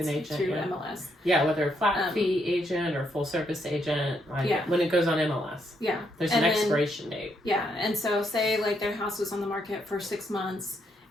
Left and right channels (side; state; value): both; normal; correlation 0.76